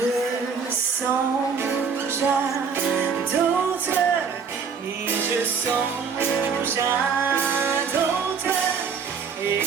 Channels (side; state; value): left; quieter; 6.0 dB